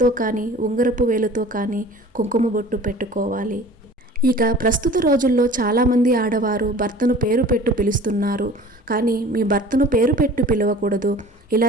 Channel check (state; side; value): normal; both; correlation 0.44